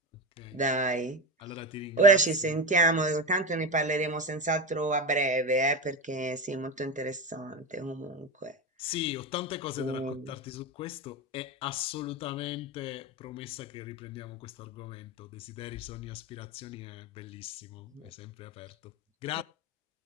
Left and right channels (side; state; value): both; normal; correlation 0.20